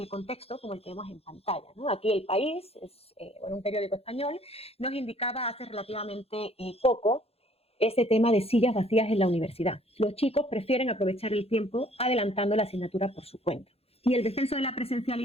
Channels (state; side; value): late; right; 0.29 ms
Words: contexto como el que vemos en pantalla, ¿no? Aquí El País, es un periódico español, nos indicaba hace relativamente poco ese tema de sillas vacías en la universidad. Los chicos prefieren aprovechar el tiempo adelantando la asignatura por su cuenta. Y el descenso de la